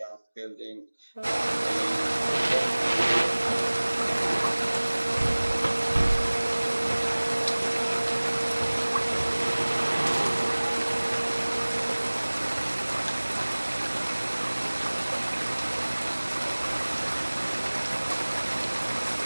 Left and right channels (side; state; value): both; inverted; correlation -1.00